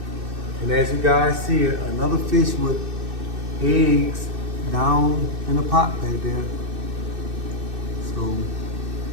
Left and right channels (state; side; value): late; left; 2.6 ms